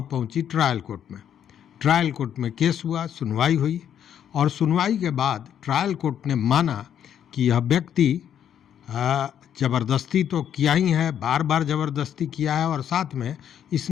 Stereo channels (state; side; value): quieter; right; 9.4 dB